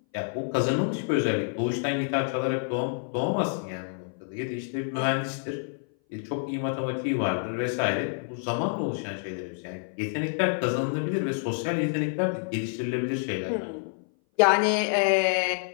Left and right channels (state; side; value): silent; right; 58 dB below the other